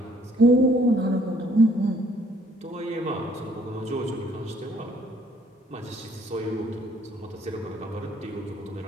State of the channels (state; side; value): normal; both; correlation 0.63